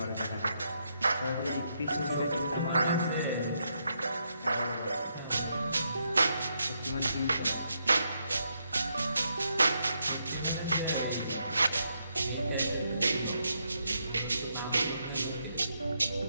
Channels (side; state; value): both; inverted; correlation -0.79